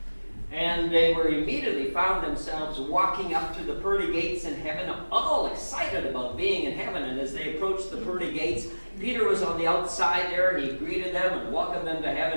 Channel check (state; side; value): inverted; both; correlation -1.00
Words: And they were immediately found themselves walking up to the pearly gates in heaven, all excited about being in heaven. And as they approached the pearly gates, Peter was on the outside there. He greeted them and welcomed them to